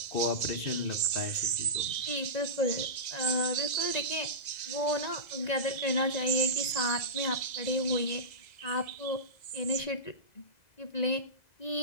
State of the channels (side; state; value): right; late; 2.0 ms